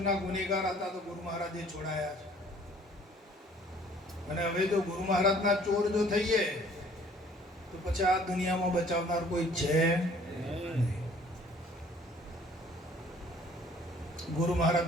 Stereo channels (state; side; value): normal; both; correlation 0.56